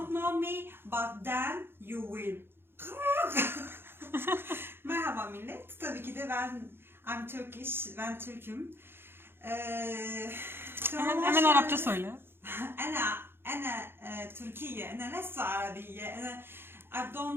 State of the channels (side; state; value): left; late; 0.11 ms